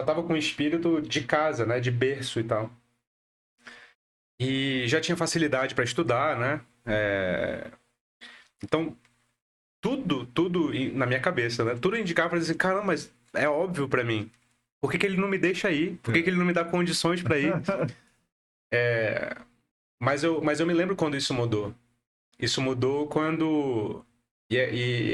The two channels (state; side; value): identical; both; correlation 1.00